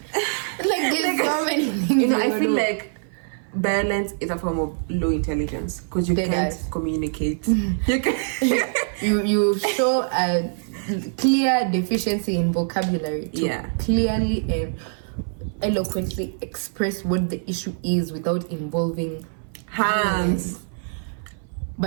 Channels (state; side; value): silent; left; 57 dB below the other